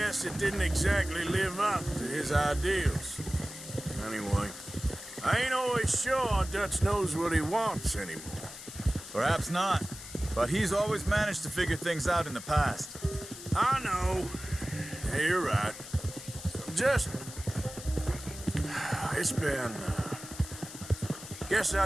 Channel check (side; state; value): left; noise; hiss, 13 dB below the sound